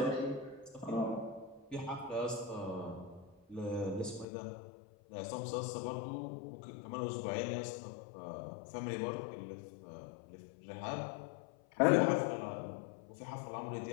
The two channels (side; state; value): right; drops out; at 4.2 s